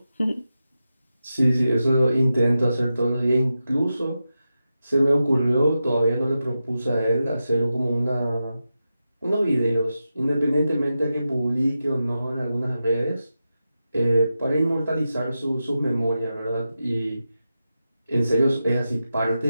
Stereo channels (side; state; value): both; inverted; correlation -0.90